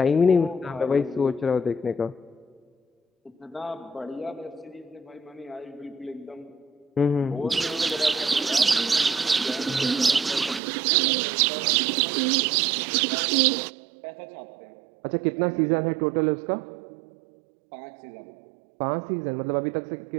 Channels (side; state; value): left; drops out; at 10.6 s